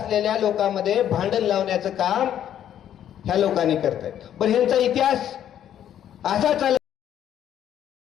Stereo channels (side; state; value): right; quieter; 10.4 dB